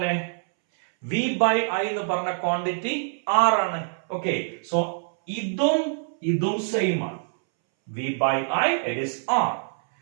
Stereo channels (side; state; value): left; silent; 62 dB below the other